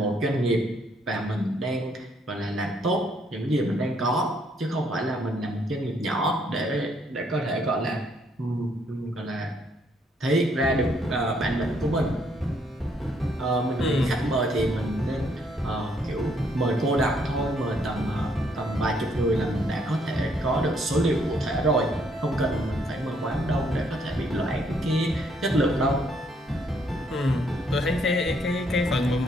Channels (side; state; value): both; normal; correlation 0.69